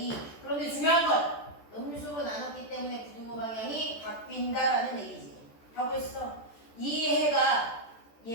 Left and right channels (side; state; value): right; late; 14 ms